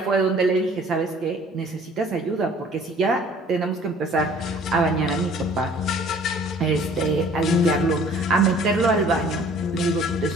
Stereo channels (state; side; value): normal; both; correlation 0.53